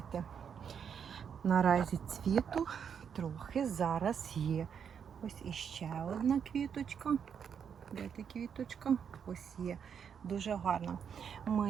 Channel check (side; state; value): left; quieter; 7.4 dB